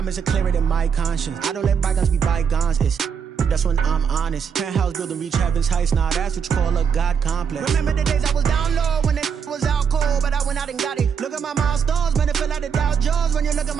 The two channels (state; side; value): quieter; left; 6.9 dB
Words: are clearer than my conscience. I don't let bygones be bygones. That's when I'm honest. Penthouse building, reach heaven's heights. Now that's what you call a God complex. Remember the days I was down low when it was out cold, but I went out and got it. Look at my milestones, man, it feel like the Dow Jones when you look at